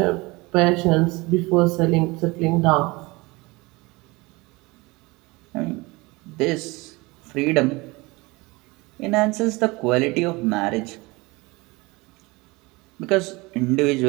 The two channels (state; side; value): quieter; left; 23.8 dB